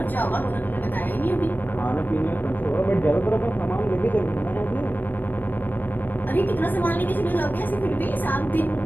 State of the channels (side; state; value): right; late; 0.090 ms